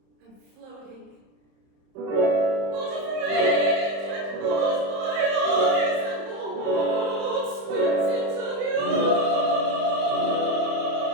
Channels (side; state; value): left; late; 30 ms